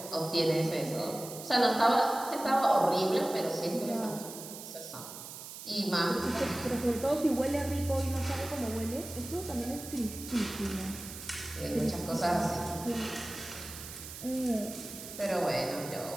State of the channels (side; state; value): right; noise; hiss, 12 dB below the sound